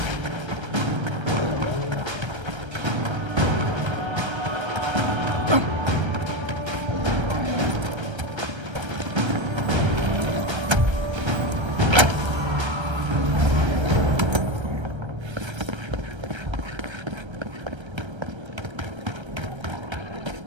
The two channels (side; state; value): left; late; 1.3 ms